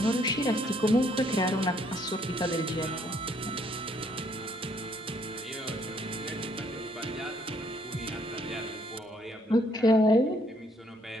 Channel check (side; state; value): both; normal; correlation 0.67